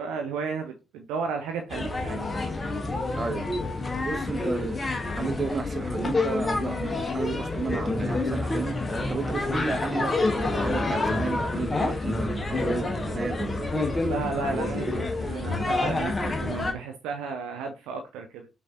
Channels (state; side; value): normal; both; correlation 0.82